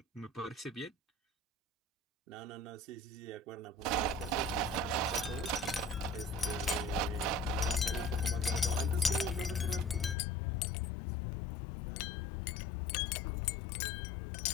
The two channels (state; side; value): drops out; right; at 10.2 s